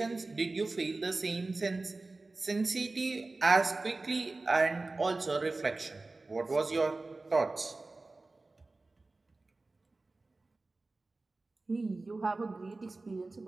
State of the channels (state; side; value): quieter; left; 3.3 dB